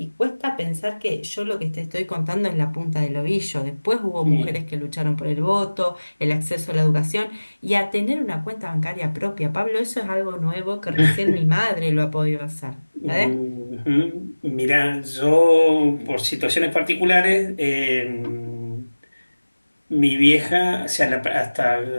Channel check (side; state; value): both; inverted; correlation -1.00